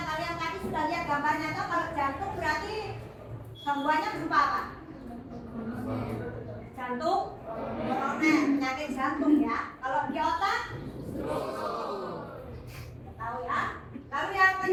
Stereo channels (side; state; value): both; identical; correlation 1.00